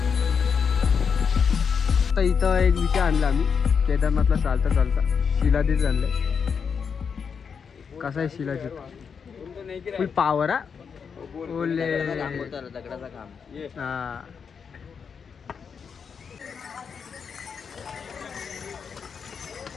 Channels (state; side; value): quieter; right; 6.3 dB